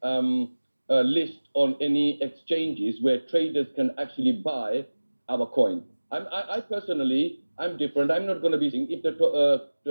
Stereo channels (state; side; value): inverted; both; correlation -1.00